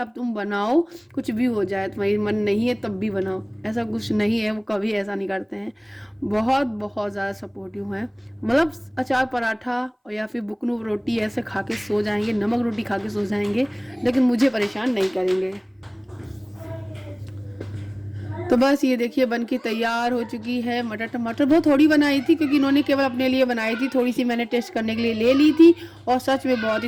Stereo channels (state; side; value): identical; both; correlation 1.00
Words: तुम बनाओ, कुछ भी हो जाए, तुम्हारी मन नहीं है तब भी बनाओ, ऐसा कुछ नहीं है, वो कभी ऐसा नहीं करते हैं। बहुत बहुत ज़्यादा सपोर्टिव हैं, मतलब अचार पराठा और या फिर बुकनू रोटी ऐसे खा के सो जाएंगे, नमक रोटी खा के सो जाएंगे, लेकिन मुझे परेशान नहीं करेंगे। तो बस ये देखिए बन के तैयार हो चुकी है। मटर टमाटर बहुत थोड़ी बनाई थी, क्योंकि इन्होंने केवल अपने लिए बनाई थी, थोड़ी सी मैंने टेस्ट करने के लिए ले ली थी, और सच में बहुत